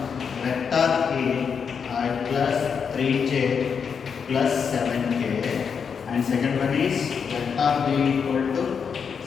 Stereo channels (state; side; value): quieter; right; 6.5 dB